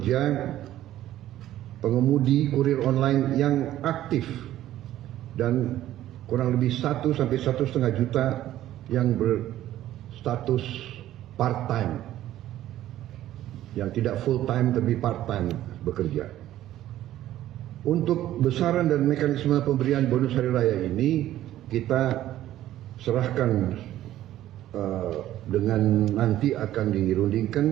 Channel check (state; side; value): quieter; left; 13.4 dB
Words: pengemudi kurir online yang aktif dan kurang lebih 1 sampai 1,5 juta yang berstatus part-time, yang tidak full-time tapi part-time bekerja. Untuk besaran dan mekanisme pemberian bonus hari raya ini kita serahkan dengan nanti akan